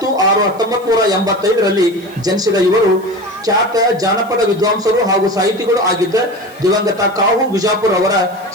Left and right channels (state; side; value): noise; right; hiss, 26 dB below the sound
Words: ಜನಿಸಿದ ಇವರು ಖ್ಯಾತ ಜಾನಪದ ವಿದ್ವಾಂಸರು ಹಾಗೂ ಸಾಹಿತಿಗಳು ಆಗಿದ್ದ ದಿವಂಗತ ಕಾಹು ವಿಜಾಪುರ್ ಅವರ